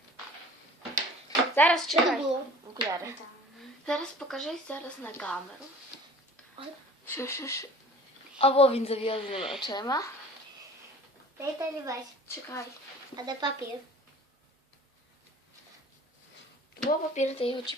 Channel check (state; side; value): normal; both; correlation 0.46